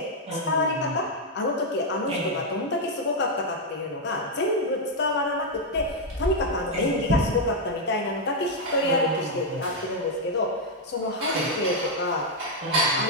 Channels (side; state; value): both; normal; correlation -0.01